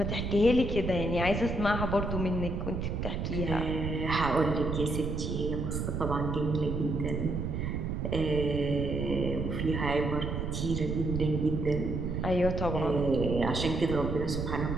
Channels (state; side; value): noise; right; rumble, 2 dB below the sound